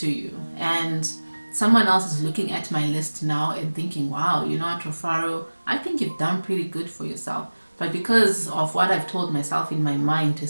you. And someone else is looking at my list now and thinking, wow, you know what, Rufaro, I think you've done pretty good for yourself. But because of what I've told myself in my mind to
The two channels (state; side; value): inverted; both; correlation -1.00